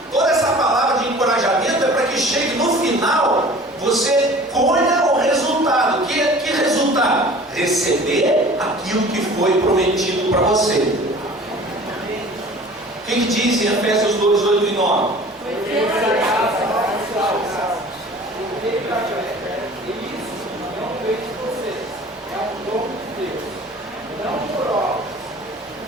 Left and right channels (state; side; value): normal; both; correlation 0.45